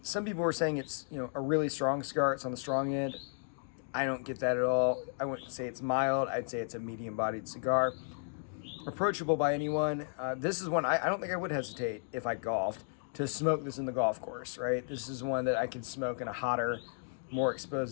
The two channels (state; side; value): silent; right; digital silence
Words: Some people were saying it's a really strong cigar. It's on the strong end. I don't get that at all. I wouldn't say it's mild. I'd say it's a medium-bodied cigar. Approachable by anyone. This is one I don't think I would hesitate if I golfed to smoke this in the golf course, right? This is one that I could smoke in a hotter, more